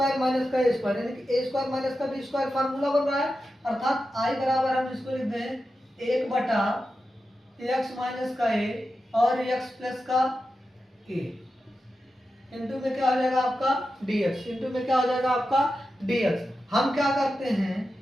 माइनस का ए स्क्वायर यानी कि ए स्क्वायर माइनस का बी स्क्वायर फार्मूला बन रहा है, अर्थात आई बराबर हम इसको लिख दें 1/x माइनस का ए और x प्लस का ए इंटू में क्या हो जाएगा आपका dx, इंटू में क्या हो जाएगा आपका dx। हम क्या करते हैं,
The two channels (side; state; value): both; normal; correlation 0.91